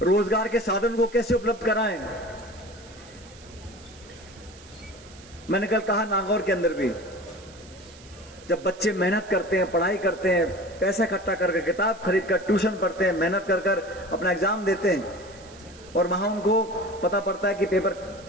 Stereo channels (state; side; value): noise; right; hiss, 22 dB below the sound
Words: रोजगार के साधन को कैसे उपलब्ध कराएं। मैंने कल कहा नागौर के अंदर भी, जब बच्चे मेहनत करते हैं, पढ़ाई करते हैं, पैसा इकट्ठा करके, किताब खरीद कर, ट्यूशन पढ़ते हैं, मेहनत कर कर अपना एग्जाम देते हैं, और वहां उनको पता पड़ता है कि पेपर